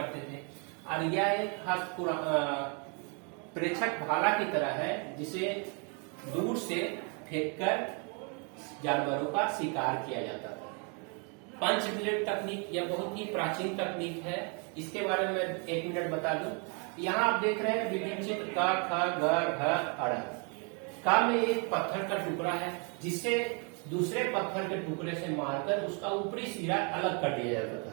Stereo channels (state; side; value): quieter; left; 36.4 dB